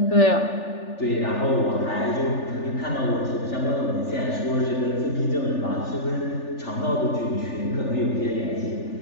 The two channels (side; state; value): right; late; 3.4 ms